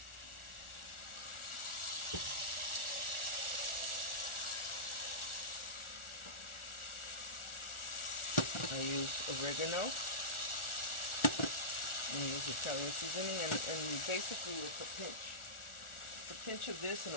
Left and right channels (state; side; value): late; right; 1.4 ms